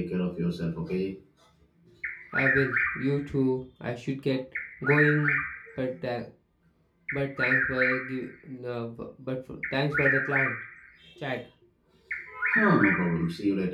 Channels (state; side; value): identical; both; correlation 1.00